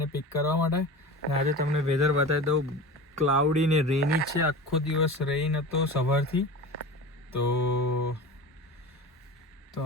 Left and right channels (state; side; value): normal; both; correlation 0.32